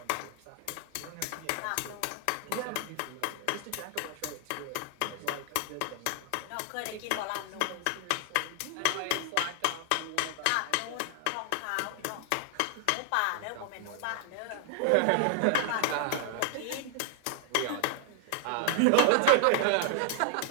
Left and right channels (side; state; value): both; different; correlation 0.00